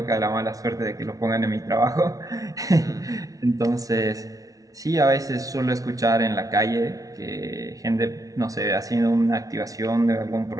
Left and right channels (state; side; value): late; left; 0.18 ms